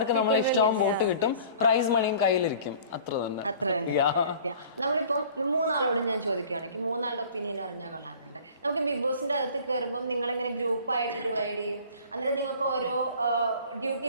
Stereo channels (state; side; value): inverted; both; correlation -0.47